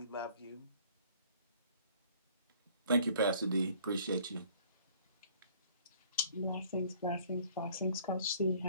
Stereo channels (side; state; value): both; inverted; correlation -0.55